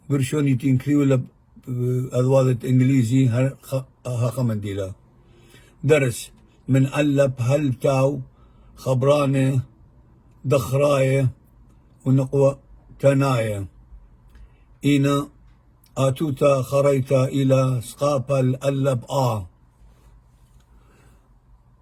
برشوني تنكريو لب أذوادة إنجليزي ها خمنديلا. درس من ألب هلتاو خبراني دخراي ونقوى تنايا إنا آتوتا خريتا إلى سقاپا الألب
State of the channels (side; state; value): both; identical; correlation 1.00